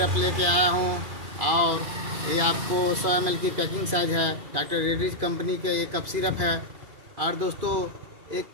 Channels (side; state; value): left; late; 2.5 ms